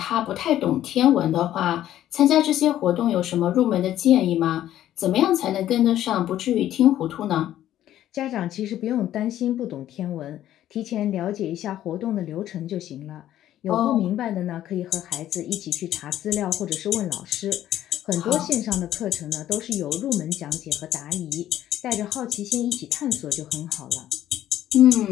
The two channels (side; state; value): right; quieter; 12.4 dB